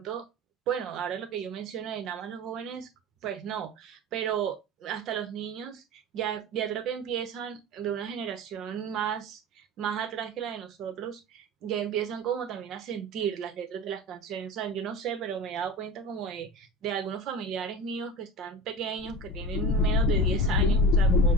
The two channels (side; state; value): both; normal; correlation 0.31